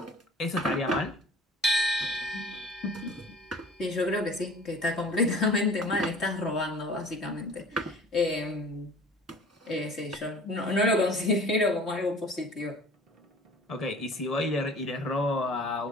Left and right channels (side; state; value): both; normal; correlation 0.45